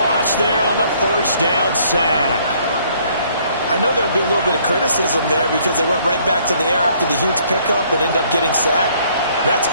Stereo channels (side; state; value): both; inverted; correlation -0.63